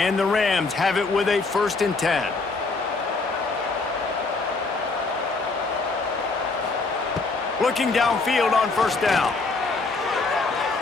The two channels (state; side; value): quieter; right; 3.8 dB